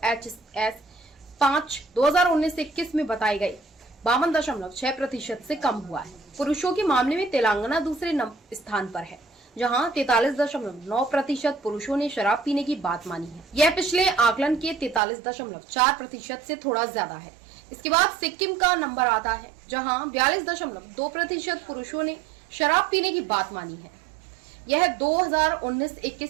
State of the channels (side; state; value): left; drops out; at 15.0 s